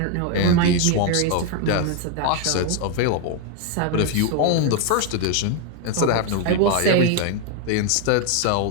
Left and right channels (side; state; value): both; different; correlation 0.01